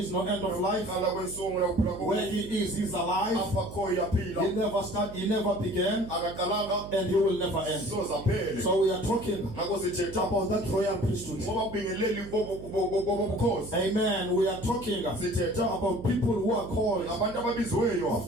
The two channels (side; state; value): right; noise; hum, 13 dB below the sound